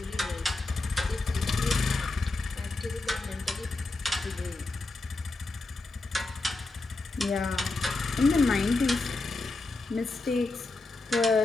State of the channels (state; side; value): quieter; right; 3.2 dB